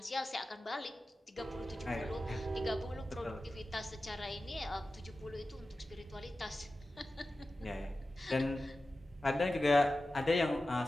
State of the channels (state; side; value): normal; both; correlation 0.94